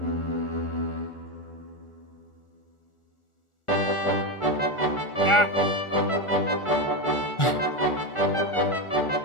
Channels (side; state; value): right; late; 1.4 ms